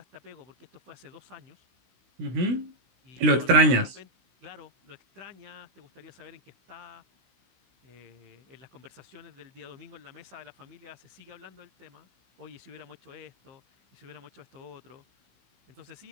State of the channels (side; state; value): left; late; 16 ms